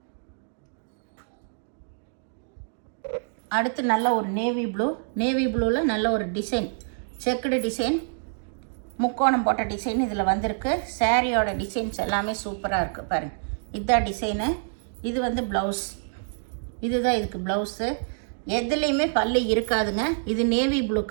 அடுத்து நல்ல ஒரு நேவி ப்ளூவில் நல்ல ஒரு டிசைன், செக்குடு டிசைன், முக்கோணம் போட்ட டிசைன் இதில் வந்திருக்கு. சாரியோட டிசைன்ஸ் எல்லாமே சூப்பராக இருக்குது பாருங்கள். இதுதான் டிசைனு. இது வந்து ப்ளவுஸ். இதுதான் இதுக்கு ப்ளவுஸு. எதுலேயுமே பல்லு இருக்காதுங்க. இது நேவி ப்ளூ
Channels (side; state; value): left; silent; digital silence